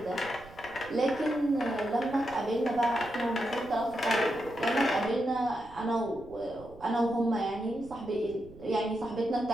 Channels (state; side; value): noise; right; rumble, 20 dB below the sound